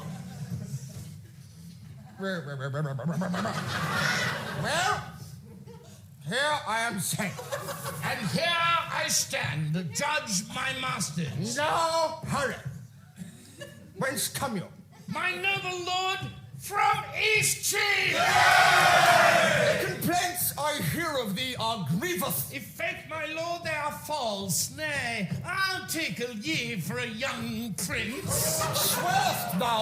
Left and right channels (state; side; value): identical; both; correlation 1.00